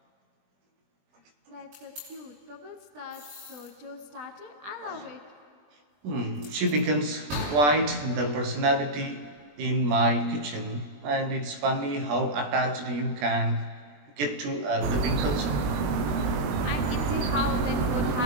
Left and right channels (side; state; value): left; late; 20 ms